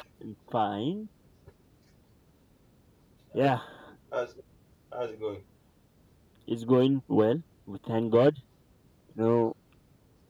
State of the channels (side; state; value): both; identical; correlation 1.00